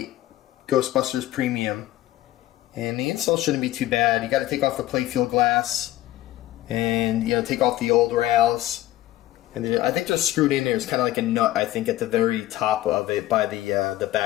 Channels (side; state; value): right; quieter; 15.0 dB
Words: GhostBusters Premium. And the install shouldn't be too bad. You got to take off the playfield glass, and you know, take off the old rails. And then I think they're screwed in there. It's kind of like a nut, I think, at the very top of it by the